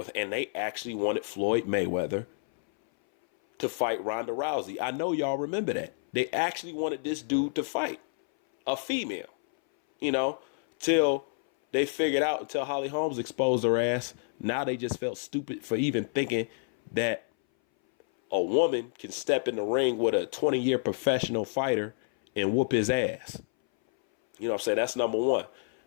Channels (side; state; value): right; silent; 58 dB below the other